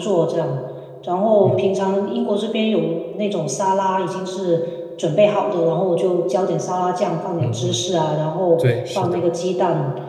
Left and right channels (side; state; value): both; identical; correlation 1.00